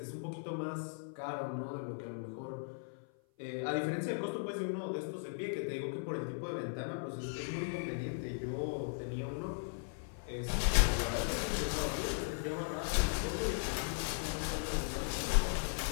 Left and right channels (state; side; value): silent; right; 53 dB below the other